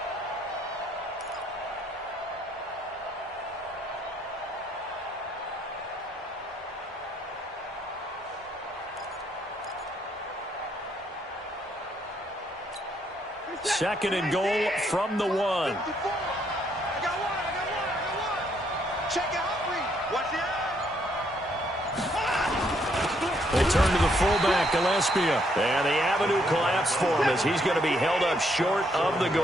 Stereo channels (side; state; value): both; normal; correlation 0.71